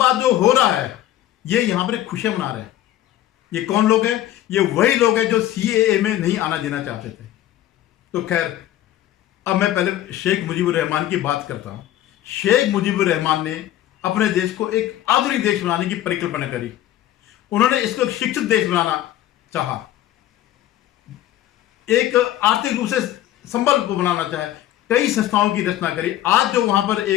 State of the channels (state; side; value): quieter; right; 13.2 dB